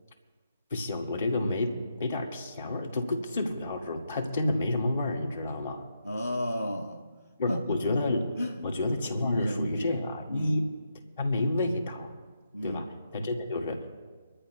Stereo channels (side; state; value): both; inverted; correlation -0.81